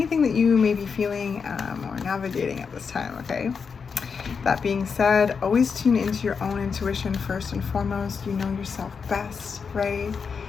that you may be feeling or navigating at this time, okay? That being said, always tune into your own intuition first and foremost. You know yourself best, right?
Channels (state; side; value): quieter; right; 5.8 dB